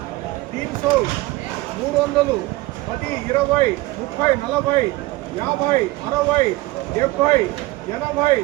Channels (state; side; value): quieter; left; 19.8 dB